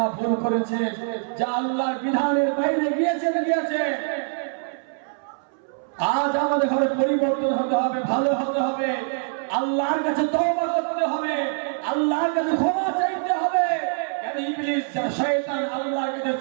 ভুল করেছে, যা আল্লাহর বিধানের বাইরে গিয়েছে, আজ আমাদের ঘরে পরিবর্তন হতে হবে, ভালো হতে হবে, আল্লাহর কাছে তওবা করতে হবে, আল্লাহর কাছে ক্ষমা চাইতে হবে। কেন ইবলিস শয়তান আল্লাহর কাছে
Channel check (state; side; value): silent; left; 62 dB below the other